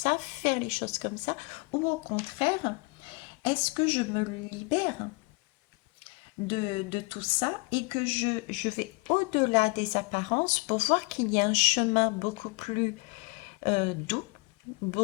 faire les choses comme ça, ou au contraire, est-ce que je me libère de tout ça et que je vais au-delà des apparences pour voir qu'il y a un chemin beaucoup plus doux,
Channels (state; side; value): quieter; right; 29.2 dB